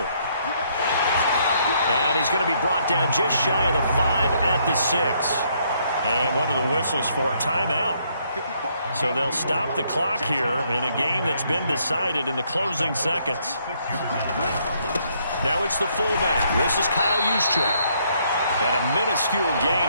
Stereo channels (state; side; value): inverted; both; correlation -0.70